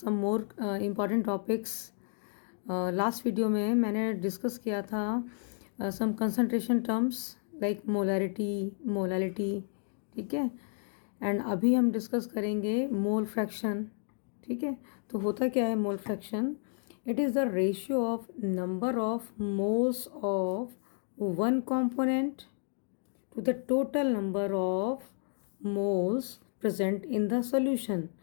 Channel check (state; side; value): silent; right; digital silence